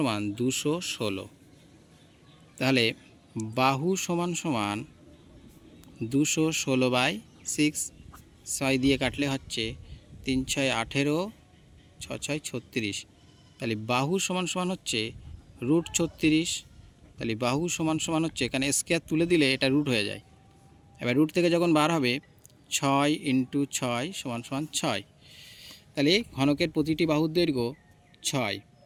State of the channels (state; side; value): identical; both; correlation 1.00